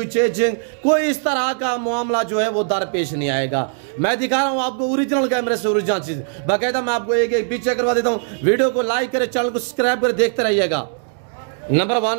चेंजिंग, कोई इस तरह का मामला जो है वो दरपेश नहीं आएगा। मैं दिखा रहा हूँ आपको ओरिजिनल कैमरे से ओरिजिनल चीज़। बाकायदा मैं आपको एक एक पीछे करवा देता हूँ। वीडियो को लाइक करें, चैनल को सब्सक्राइब करें, देखते रहिएगा। नंबर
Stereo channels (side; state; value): left; silent; digital silence